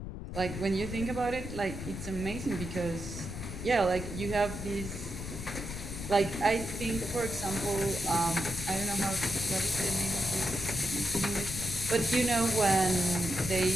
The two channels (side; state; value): left; noise; rumble, 8 dB below the sound